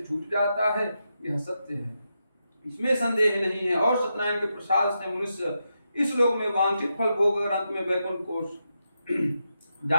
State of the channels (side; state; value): both; inverted; correlation -0.85